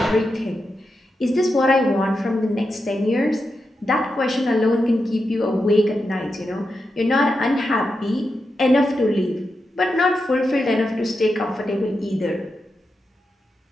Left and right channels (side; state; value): both; normal; correlation 0.88